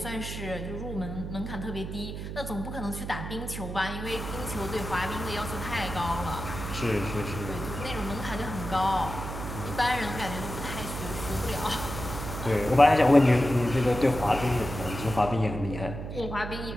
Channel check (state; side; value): noise; right; hum, 7 dB below the sound